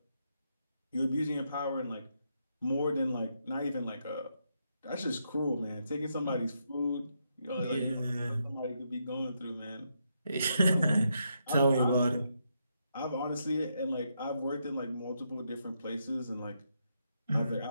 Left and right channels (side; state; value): both; inverted; correlation -0.80